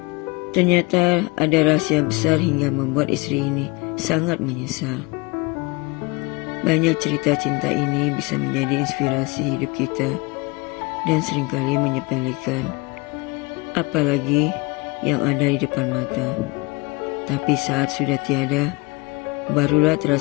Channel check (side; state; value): right; quieter; 25.1 dB